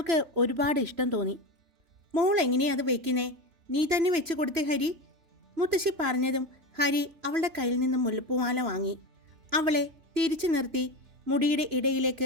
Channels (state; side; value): late; left; 3.0 ms